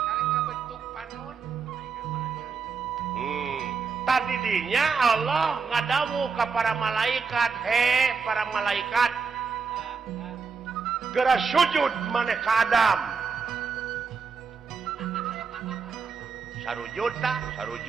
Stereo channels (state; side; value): quieter; left; 5.4 dB